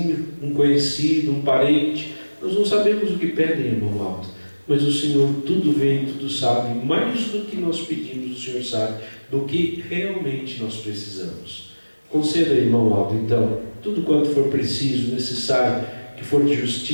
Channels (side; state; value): both; inverted; correlation -1.00